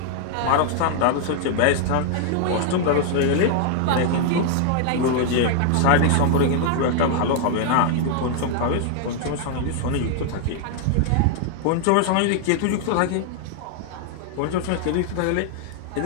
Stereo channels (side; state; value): both; different; correlation 0.00